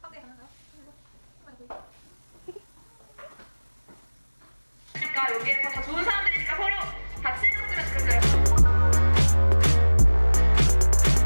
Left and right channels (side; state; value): both; inverted; correlation -1.00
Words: 그러니까 여기에서 다 좋은 사람들이니까 서로 같이 해줬으면 좋겠어요.